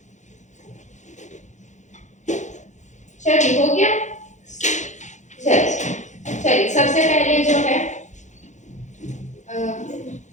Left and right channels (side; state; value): right; late; 0.35 ms